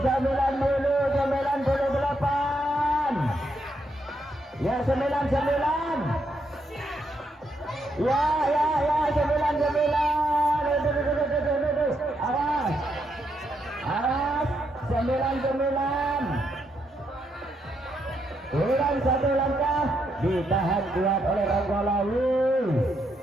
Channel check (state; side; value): normal; both; correlation 0.79